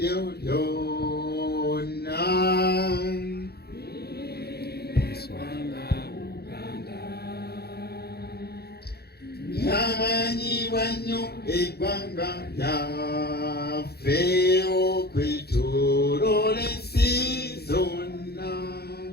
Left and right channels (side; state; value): right; late; 0.46 ms